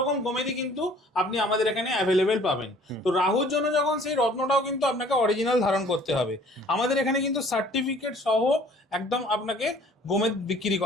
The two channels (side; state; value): both; normal; correlation 0.54